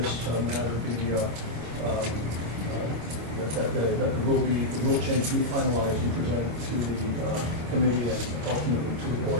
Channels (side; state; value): left; late; 26 ms